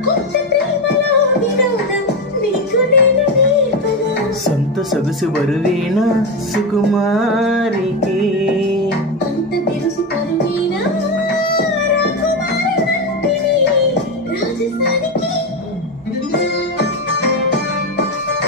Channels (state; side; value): normal; both; correlation 0.14